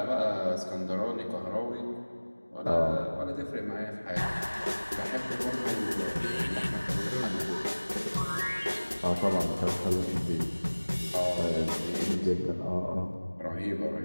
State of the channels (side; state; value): both; inverted; correlation -1.00